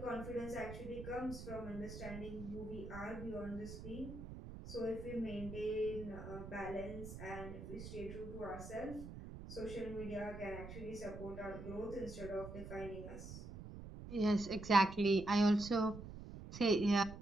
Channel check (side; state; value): right; noise; rumble, 10 dB below the sound